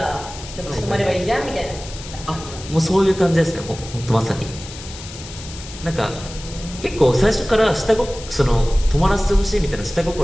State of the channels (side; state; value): left; noise; hiss, 14 dB below the sound